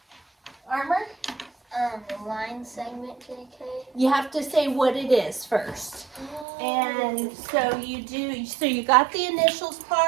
JK. You have to say what it is first. And so you got the initials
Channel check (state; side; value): drops out; left; at 6.5 s